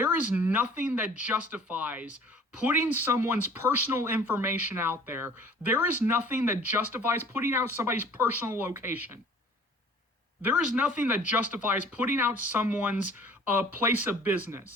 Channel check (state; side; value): normal; both; correlation 0.50